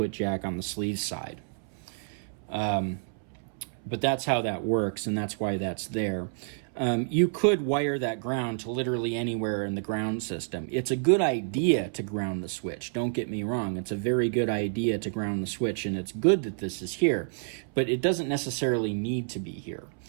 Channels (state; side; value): silent; left; 59 dB below the other